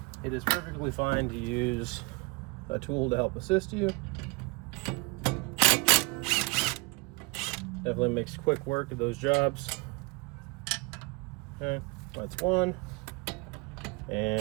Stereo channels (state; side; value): quieter; left; 27.8 dB